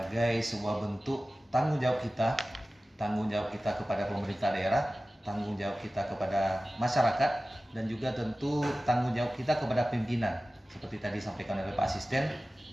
sebuah bentuk tanggung jawab kita kepada pemerintah daerah, tanggung jawab kita kepada masyarakat, dan juga tentu tanggung jawab kita kepada pimpinan. Seperti tadi disampaikan oleh Pak Asisten,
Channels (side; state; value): both; normal; correlation 0.96